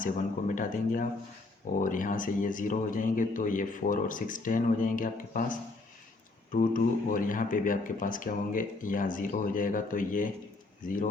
1 को मिटा देंगे आप, और यहाँ से ये 0 हो जाएंगे, तो ये 4 और 6 10 हो जाएंगे आपके पास, 2 2, और यहाँ पे भी आपके पास क्या होंगे, यहाँ 0 हो जाएगा, तो ये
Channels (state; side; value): quieter; right; 3.3 dB